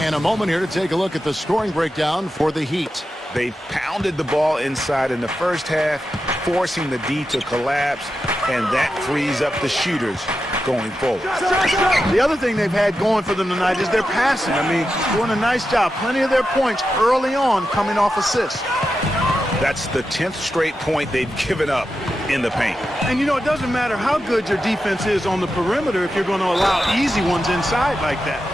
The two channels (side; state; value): both; normal; correlation 0.90